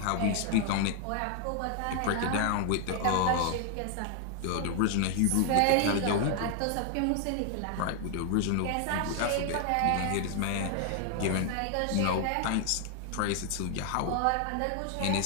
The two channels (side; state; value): both; different; correlation 0.00